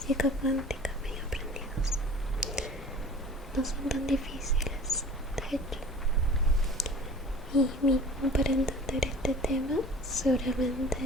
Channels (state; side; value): normal; both; correlation 0.43